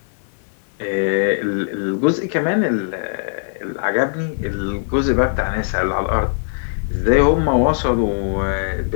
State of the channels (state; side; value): silent; right; 58 dB below the other